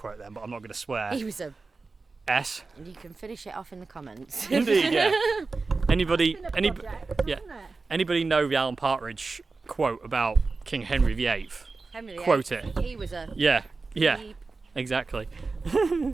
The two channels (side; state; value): left; quieter; 4.0 dB